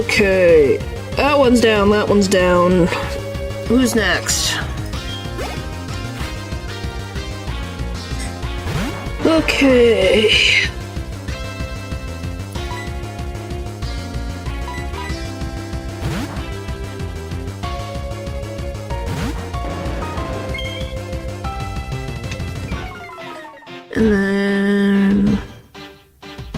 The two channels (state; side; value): identical; both; correlation 1.00